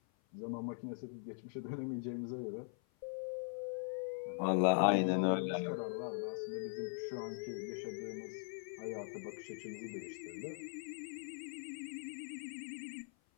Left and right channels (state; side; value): silent; right; 50 dB below the other